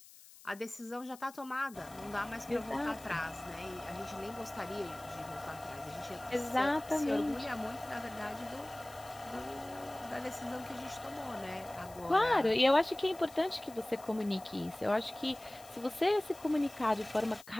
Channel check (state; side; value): noise; left; hiss, 20 dB below the sound